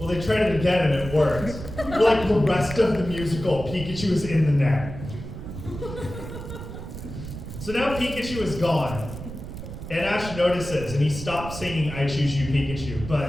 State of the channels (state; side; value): noise; right; rumble, 10 dB below the sound